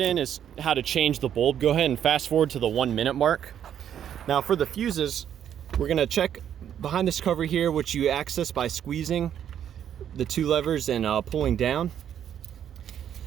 is how to change the bulb, go ahead and fast forward to the 1 minute mark. Now for the fuses, we're going to check behind this cover here, which you access by squeezing the two levers and pulling down.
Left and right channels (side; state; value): left; quieter; 9.6 dB